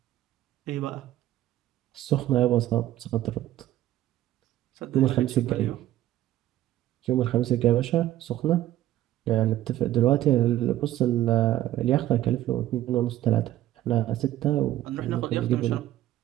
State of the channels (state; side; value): quieter; left; 13.8 dB